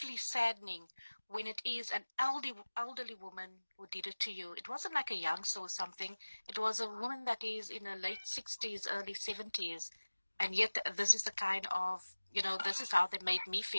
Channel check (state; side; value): inverted; both; correlation -1.00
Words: saddening when it is an elderly woman who did it to you. It wasn't like a youngster or something. It was a woman that is in her late 60s, early 70s. And yet this is the kind of, this is how they made me